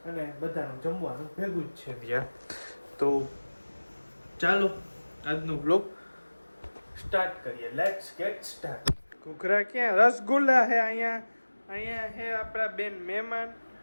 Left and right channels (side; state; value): both; inverted; correlation -1.00